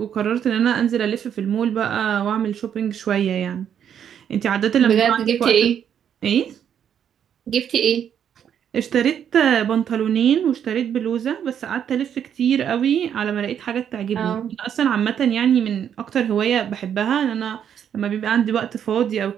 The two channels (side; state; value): left; quieter; 8.8 dB